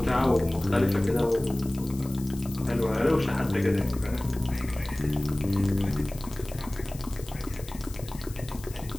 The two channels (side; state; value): left; noise; hiss, 18 dB below the sound